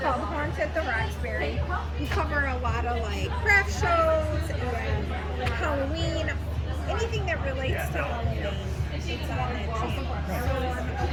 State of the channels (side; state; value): both; identical; correlation 1.00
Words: Horns at the Roxbury. We cover a lot of like craft shows and Halloween, anything that relates to Halloween. It's on that channel. So a